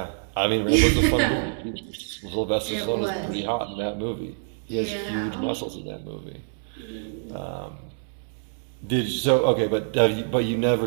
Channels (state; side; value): silent; left; digital silence